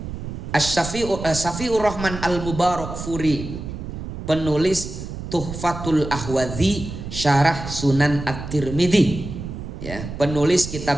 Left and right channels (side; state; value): right; noise; rumble, 8 dB below the sound